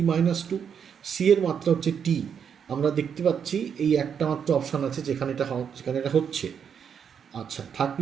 -2, সি এর মাত্রা হচ্ছে টি। আমরা দেখতে পাচ্ছি এই একটা মাত্র অপশান আছে যেখানে এটা হচ্ছে। আচ্ছা,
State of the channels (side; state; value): left; quieter; 7.5 dB